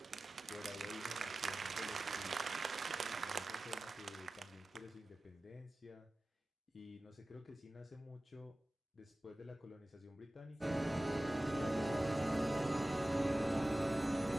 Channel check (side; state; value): both; normal; correlation 0.96